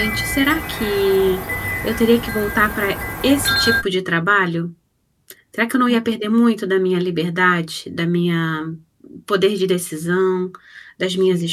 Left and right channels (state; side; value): identical; both; correlation 1.00